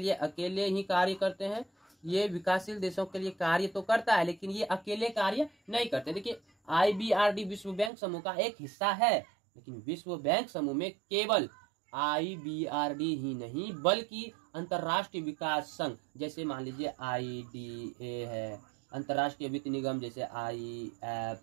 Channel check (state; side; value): drops out; left; at 7.9 s